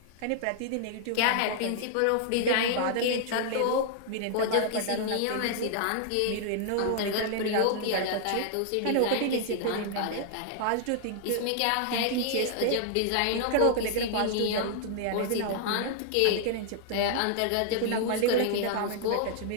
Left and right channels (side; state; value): both; different; correlation -0.01